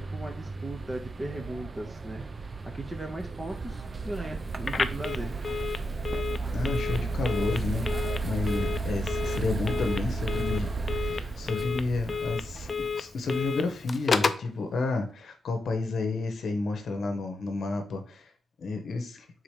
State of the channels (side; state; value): both; normal; correlation 0.86